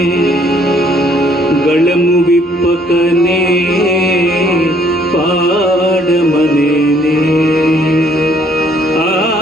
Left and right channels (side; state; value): both; normal; correlation 0.64